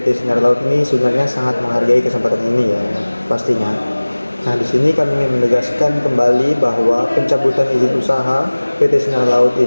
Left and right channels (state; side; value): inverted; both; correlation -1.00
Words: Sinar Laut ini sebenarnya sangat menghargai kesempatan ini ya, pastinya. Nah, di sini kami ingin menegaskan kembali bahwa pencabutan izin usaha PT Sinar Laut